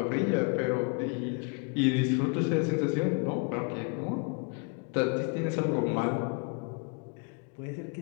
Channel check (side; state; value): right; quieter; 37.2 dB